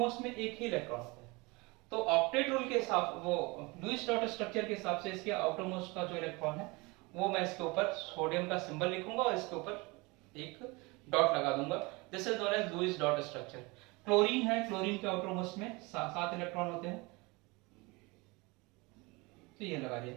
में एक ही इलेक्ट्रॉन होता है, तो ऑक्टेट रूल के हिसाब, वो लुईस डॉट स्ट्रक्चर के हिसाब से इसके आउटर मोस्ट का जो इलेक्ट्रॉन है वो मैं इसके ऊपर सोडियम का सिंबल लिखूंगा और इसके ऊपर एक डॉट लगा दूंगा, this is known as Lewis dot structure. Chlorine है, क्लोरीन के आउटर मोस्ट में 7 इलेक्ट्रॉन होते हैं, तो ये लगा दिया।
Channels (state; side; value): quieter; left; 25.5 dB